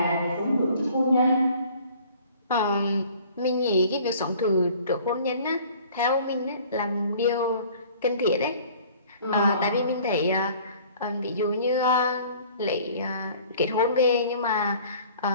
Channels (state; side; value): inverted; both; correlation -0.51